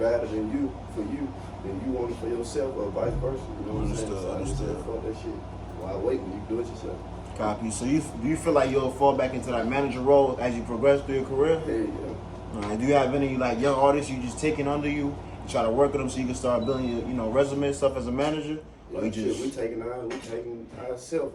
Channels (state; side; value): identical; both; correlation 1.00